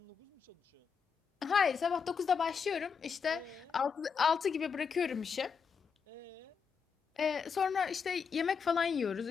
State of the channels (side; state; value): right; quieter; 6.2 dB